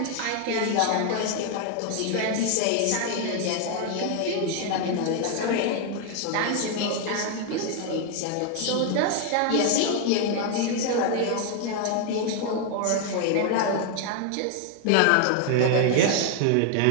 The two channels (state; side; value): different; both; correlation 0.01